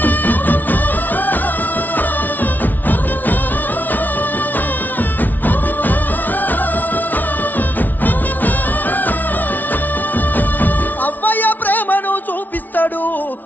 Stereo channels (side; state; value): right; late; 0.083 ms